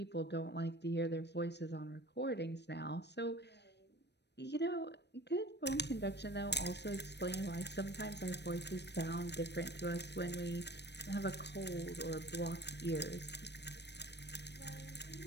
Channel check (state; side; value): late; right; 0.50 ms